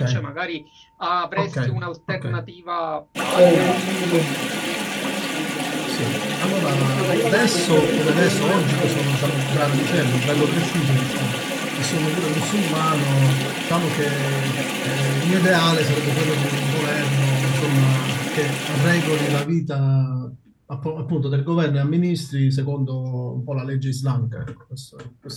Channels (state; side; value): identical; both; correlation 1.00